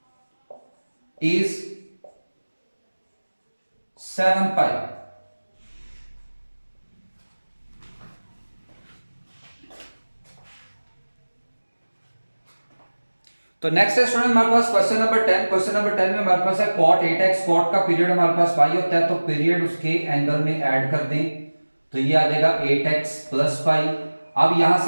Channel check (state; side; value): inverted; both; correlation -1.00